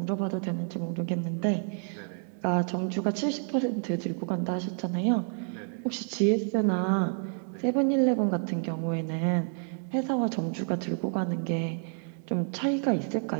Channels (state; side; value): silent; left; 58 dB below the other